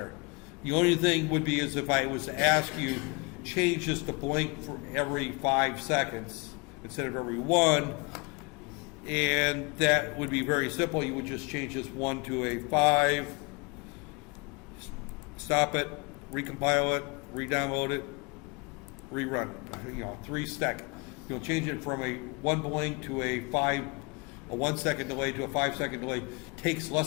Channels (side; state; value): right; quieter; 30.3 dB